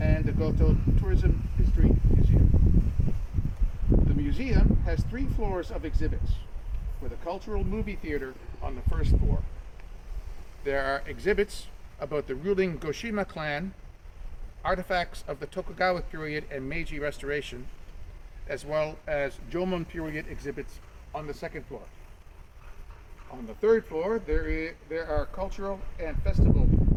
the Goto Tourism History Museum. The museum has 3 floors of exhibits, with a cultural movie theater on the first floor. There are exhibits about the ruling Goshima clan, artifacts of the Tokugawa period and Meiji Restoration, as well as Jomon period exhibits on the second floor. On the third floor, there are cultural and festival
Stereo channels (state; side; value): identical; both; correlation 1.00